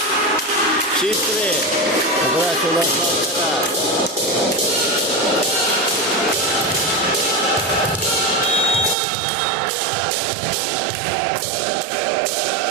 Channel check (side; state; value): left; drops out; at 9.0 s